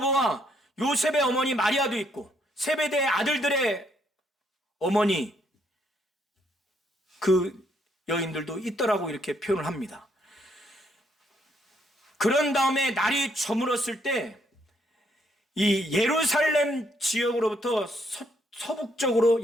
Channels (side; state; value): both; normal; correlation 0.72